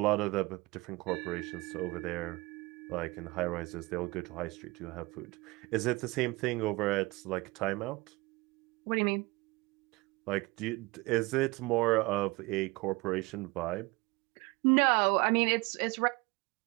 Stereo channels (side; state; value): left; quieter; 23.6 dB